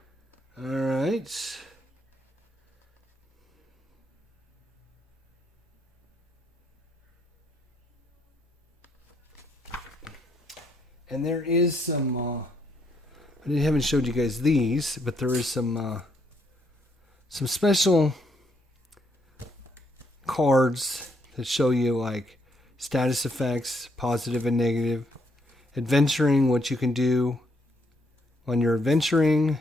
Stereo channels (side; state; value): both; normal; correlation 0.73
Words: All right. And there is some... I haven't showed you guys these, but there is some special cards that show you like status effects, positive and negative, adventuring, what you can do when you're adventuring,